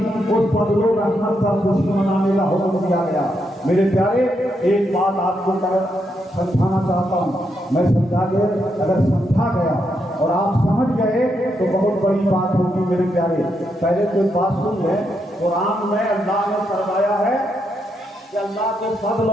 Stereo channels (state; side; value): normal; both; correlation 0.80